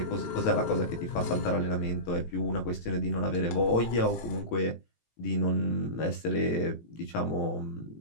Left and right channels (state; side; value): late; right; 18 ms